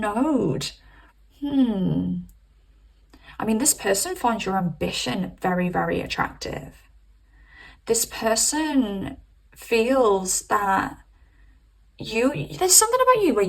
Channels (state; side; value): identical; both; correlation 1.00